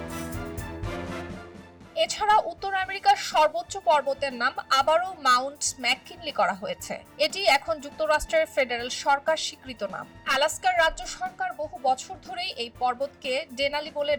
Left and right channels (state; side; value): identical; both; correlation 1.00